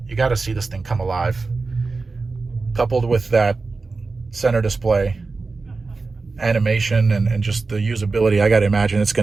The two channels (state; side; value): quieter; left; 4.0 dB